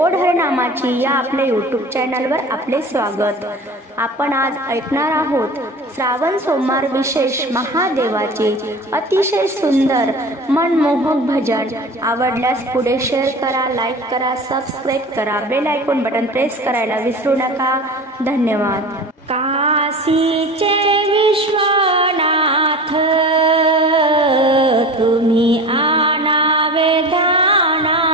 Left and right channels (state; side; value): normal; both; correlation 0.35